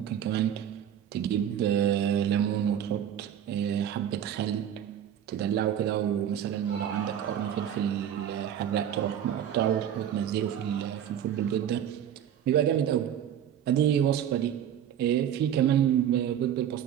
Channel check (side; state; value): left; quieter; 9.8 dB